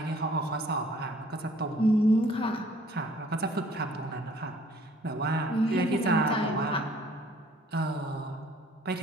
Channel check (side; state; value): both; normal; correlation 0.57